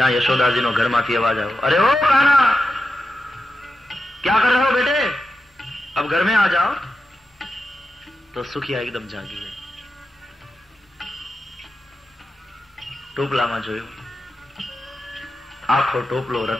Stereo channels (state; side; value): normal; both; correlation 0.90